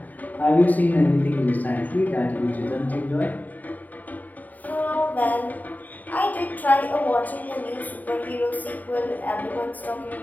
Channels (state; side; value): late; right; 0.081 ms